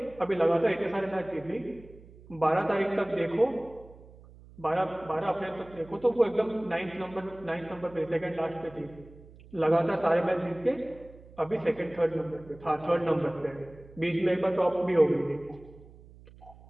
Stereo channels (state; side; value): noise; right; hum, 21 dB below the sound